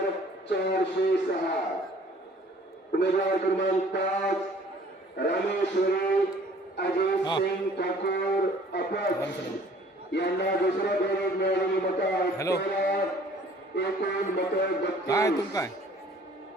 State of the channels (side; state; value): both; normal; correlation 0.54